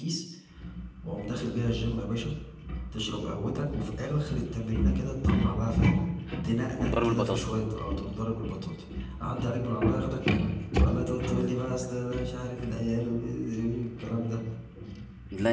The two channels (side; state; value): both; identical; correlation 1.00